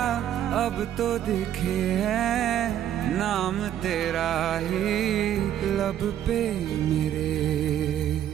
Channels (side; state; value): left; quieter; 10.9 dB